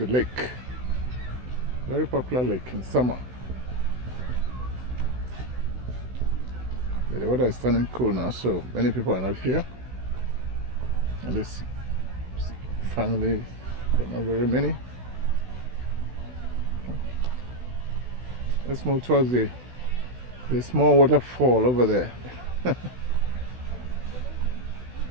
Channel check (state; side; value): late; left; 16 ms